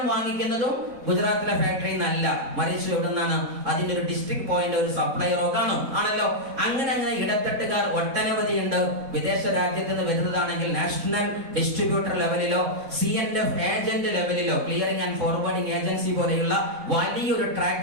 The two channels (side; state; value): left; late; 3.6 ms